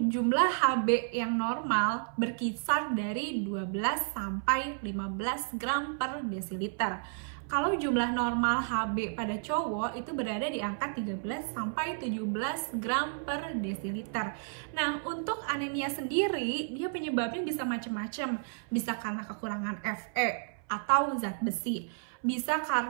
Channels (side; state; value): left; silent; 57 dB below the other